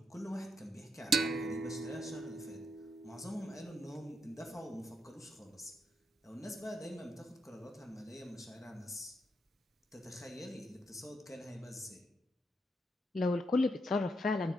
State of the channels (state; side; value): normal; both; correlation 0.80